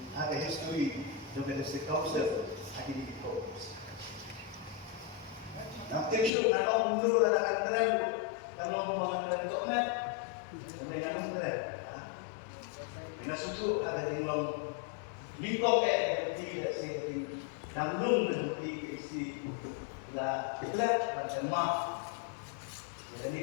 ada history juga dari council di fokus. Nanti show kalau mundur akan keren, kalau mau keren toknya, dengan keren. Dengan susu ada di long, di koke tidak sih di dalam di isi lah gelap macam mah.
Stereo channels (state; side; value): drops out; right; at 6.3 s